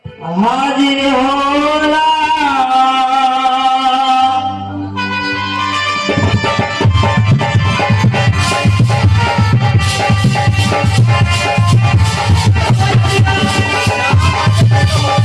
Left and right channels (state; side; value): identical; both; correlation 1.00